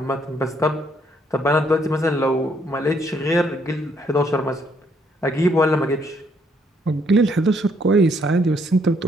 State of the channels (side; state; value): both; normal; correlation 0.69